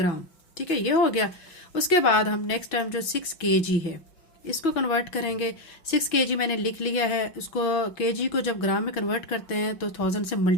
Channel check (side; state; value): right; late; 6.1 ms